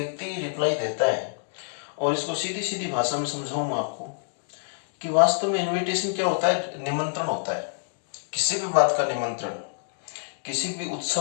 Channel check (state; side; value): silent; right; digital silence